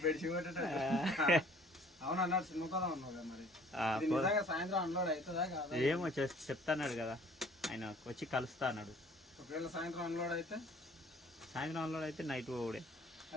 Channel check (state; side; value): normal; both; correlation 0.54